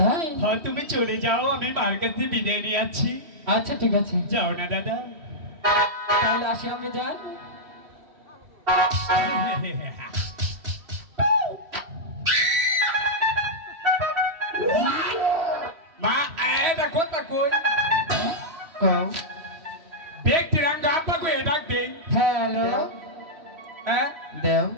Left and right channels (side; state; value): left; late; 3.1 ms